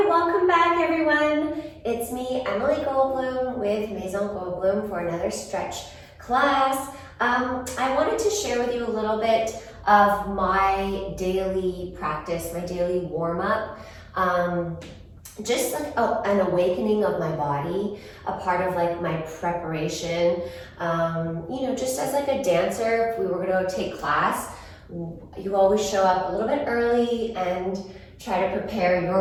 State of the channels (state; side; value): identical; both; correlation 1.00